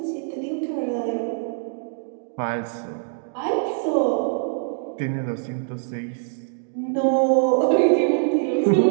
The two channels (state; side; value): silent; left; 63 dB below the other